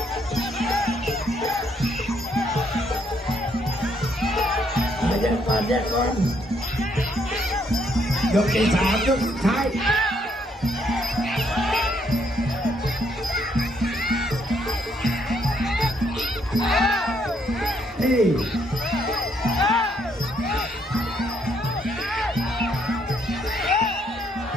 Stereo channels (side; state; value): both; normal; correlation 0.71